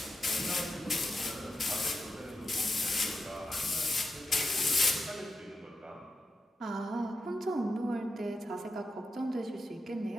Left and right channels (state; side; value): normal; both; correlation 0.88